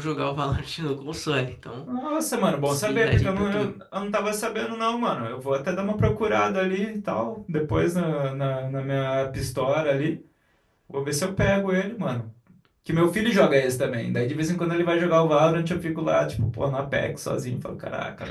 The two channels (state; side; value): identical; both; correlation 1.00